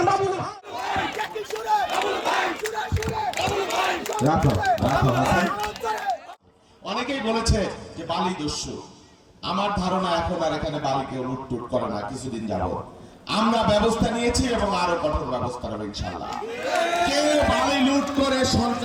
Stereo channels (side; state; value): both; identical; correlation 1.00